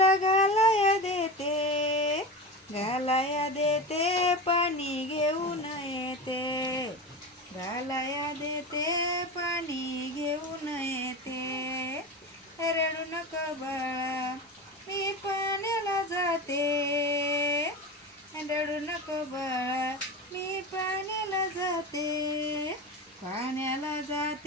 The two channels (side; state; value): both; normal; correlation 0.25